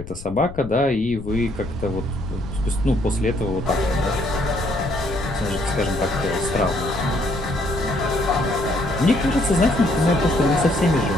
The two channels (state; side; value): noise; left; rumble, 14 dB below the sound